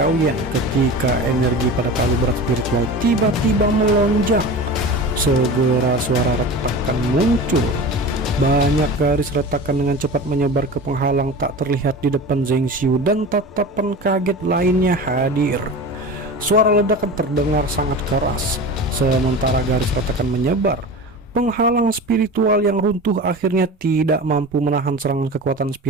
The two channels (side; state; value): both; normal; correlation 0.32